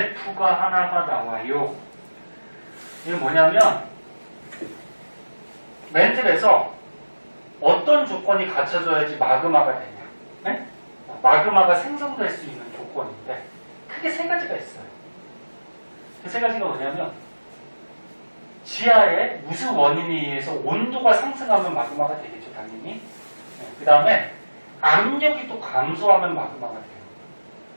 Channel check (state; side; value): inverted; both; correlation -1.00